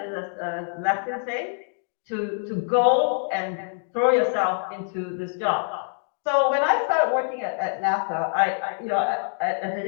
a Latin saying, to go and throw yourself into this job. So when I started working at NASA, as an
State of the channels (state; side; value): silent; right; digital silence